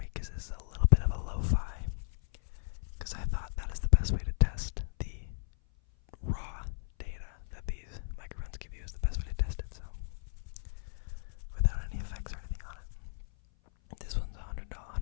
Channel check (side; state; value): right; silent; 55 dB below the other